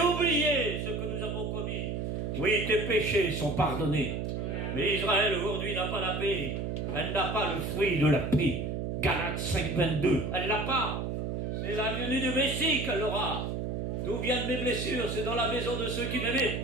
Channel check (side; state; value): right; noise; hum, 2 dB below the sound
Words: ce que nous avons commis. Oui, tes péchés sont pardonnés. Mais Israël aujourd'hui n'a pas la paix. Elle n'a pas le fruit de la paix. Galates 5, 22. Elle l'a pas. C'est la venue du Messie qu'elle aura. D'où viennent mes blessures? C'est dans la maison de ceux qui m'aimaient,